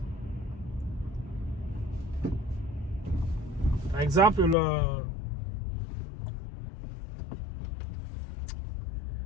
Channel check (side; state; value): right; drops out; at 4.5 s